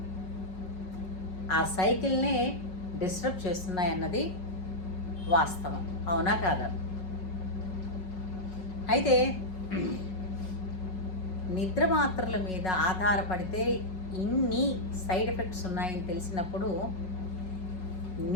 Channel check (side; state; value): right; late; 5.4 ms